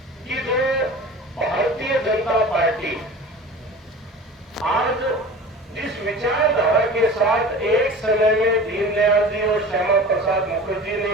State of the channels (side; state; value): both; normal; correlation 0.37